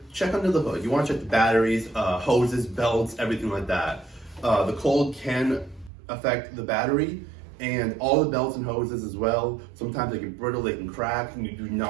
check under the hood. You want to check the batteries, hoses, belts, everything like that. The cold can affect the battery and all the belts and hoses as well. Sometimes they get brittle, they can crack, and you do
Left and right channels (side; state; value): left; drops out; at 5.9 s